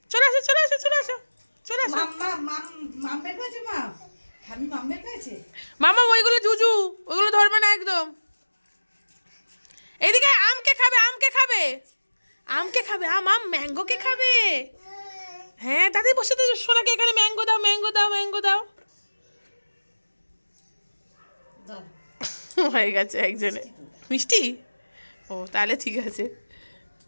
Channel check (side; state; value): both; inverted; correlation -1.00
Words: চলে আসো চলে আসো চলে আসো চলে আসো। মাম বের করেছে মা, আমি মাম বের করেছে। মামা ওইগুলো জুজু, ওইগুলো ধরবে না একদম। এদিকে আমকে খাবে, আমকে খাবে, আমকে খাবে, আম আম ম্যাঙ্গো কে খাবে। হ্যাঁ দাদি বসে তো, সোনাকে এখানে ম্যাঙ্গো দাও, ম্যাঙ্গো দাও, ম্যাঙ্গো দাও। হয়ে গেছে একজনে মিষ্টি। ও তাহলে ঠিক আছে।